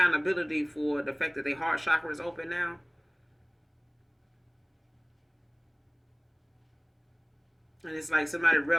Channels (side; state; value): both; identical; correlation 1.00